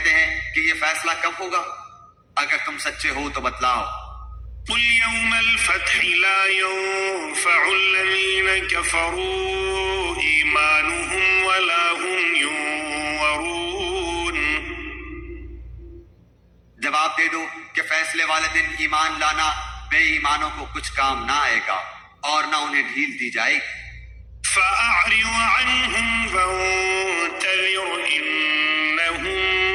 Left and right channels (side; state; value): both; identical; correlation 1.00